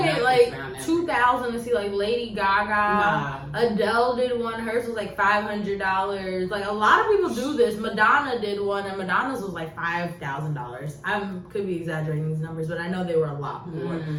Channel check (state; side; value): identical; both; correlation 1.00